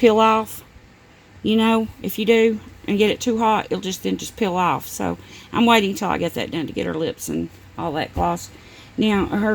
off. If you do and get it too hot, it'll just peel off. So I'm waiting until I get that done to get her lips and all that gloss. Now,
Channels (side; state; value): both; identical; correlation 1.00